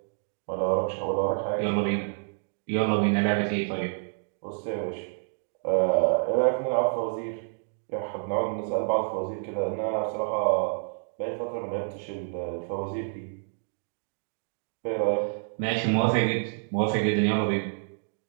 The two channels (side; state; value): left; silent; digital silence